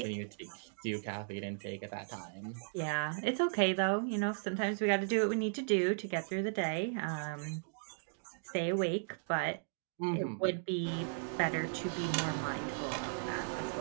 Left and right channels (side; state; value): left; silent; digital silence